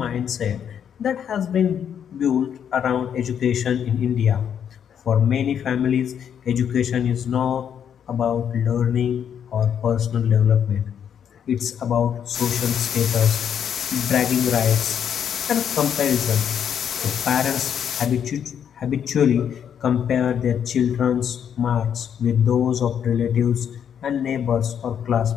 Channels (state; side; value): quieter; right; 8.5 dB